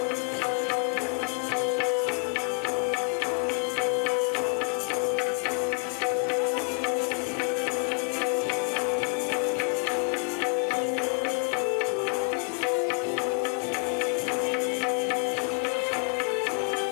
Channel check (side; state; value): right; quieter; 39.6 dB